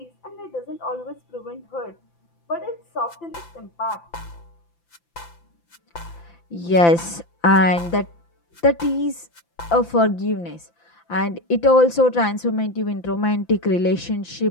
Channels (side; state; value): right; late; 5.9 ms